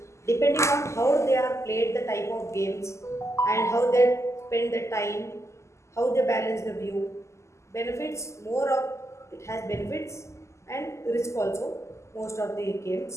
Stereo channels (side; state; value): right; late; 0.13 ms